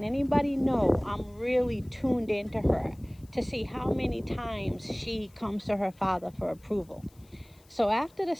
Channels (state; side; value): noise; left; hiss, 30 dB below the sound